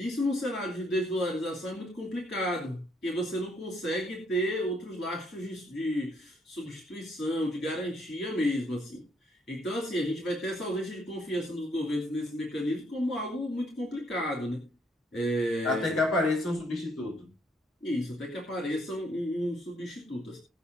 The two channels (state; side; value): normal; both; correlation 0.70